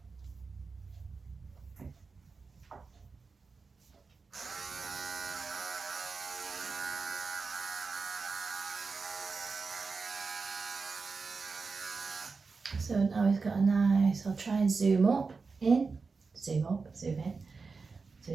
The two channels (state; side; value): quieter; left; 4.5 dB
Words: So now he's got a nice, I'll try and zoom in. So